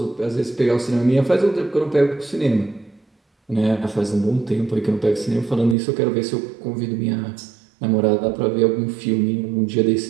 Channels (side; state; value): left; drops out; at 5.8 s